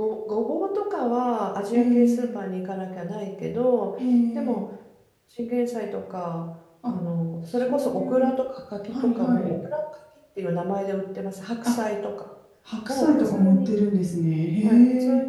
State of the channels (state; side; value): identical; both; correlation 1.00